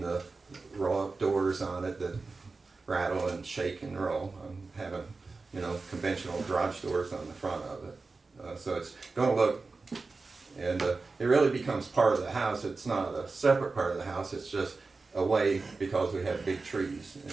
the roll-up doors on it that rattle and shake and roll. I'm having, conventional garage doors on the front of it, so it's gonna look, and it really becomes part of the house. It's not a separate part of the house, it's just a way, because we have big trees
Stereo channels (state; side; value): quieter; left; 3.9 dB